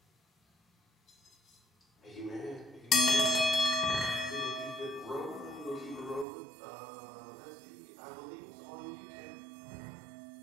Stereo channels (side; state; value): left; drops out; at 6.2 s